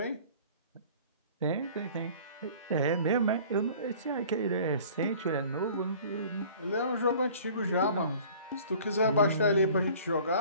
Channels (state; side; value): inverted; both; correlation -0.48